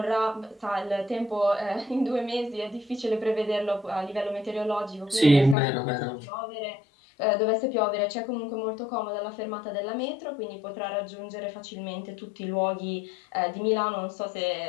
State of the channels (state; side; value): drops out; right; at 5.6 s